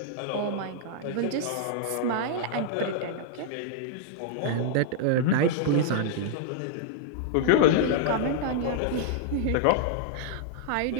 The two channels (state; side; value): different; both; correlation -0.01